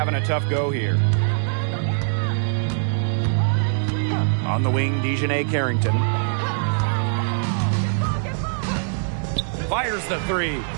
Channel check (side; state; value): left; silent; 62 dB below the other